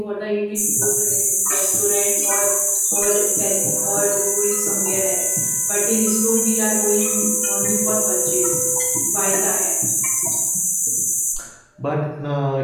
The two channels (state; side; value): identical; both; correlation 1.00